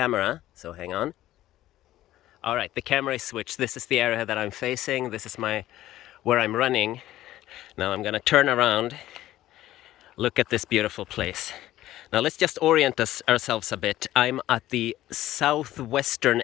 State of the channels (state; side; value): quieter; right; 14.5 dB